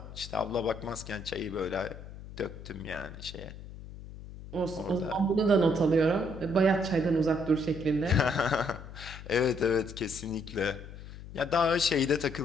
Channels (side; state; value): left; noise; hum, 14 dB below the sound